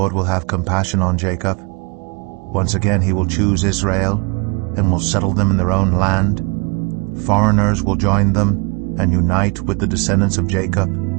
will have compassion on Jacob. Once again he will choose Israel and will settle them in their own land. Foreigners will join them and unite with the descendants of Jacob.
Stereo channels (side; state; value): left; quieter; 32.3 dB